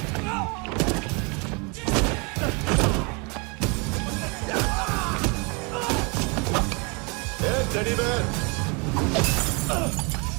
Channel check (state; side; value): quieter; left; 31.5 dB